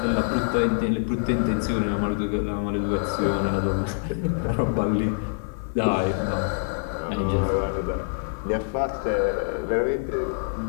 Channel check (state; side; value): silent; right; 56 dB below the other